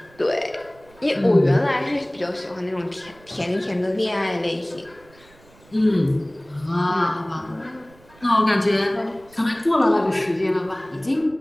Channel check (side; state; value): right; noise; rumble, 27 dB below the sound